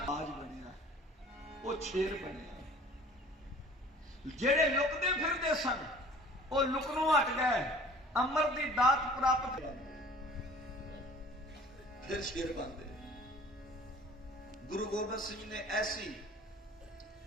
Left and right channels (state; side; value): normal; both; correlation 0.48